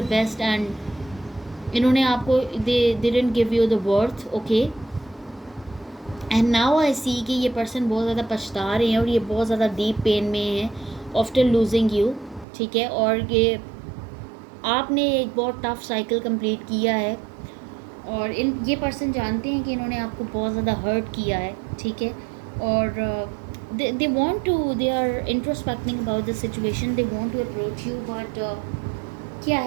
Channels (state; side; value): drops out; left; at 12.5 s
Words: best, and इन्होंने आपको they didn't give you the worth. Okay, and now I see कि ये पर्सन बहुत ज़्यादा पछता रहे हैं और ये बहुत ज़्यादा डीप पेन में है आफ्टर लूजिंग यू. ठीक है, और ये आपने एक बहुत टफ साइकिल कंप्लीट किया है और ये पर्सन जानते हैं कि इन्होंने आपको बहुत ज़्यादा हर्ट किया है. ठीक है, और they want to, they are introspecting about the situation, they want to approach you, but क्या